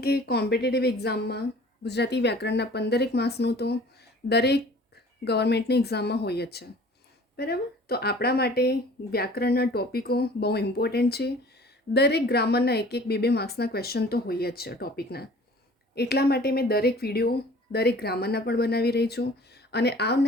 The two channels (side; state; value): both; normal; correlation 0.48